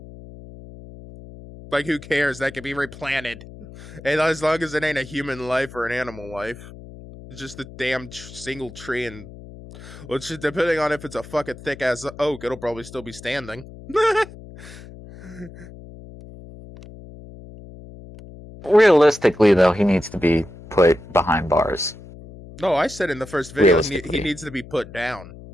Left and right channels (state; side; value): noise; left; hum, 17 dB below the sound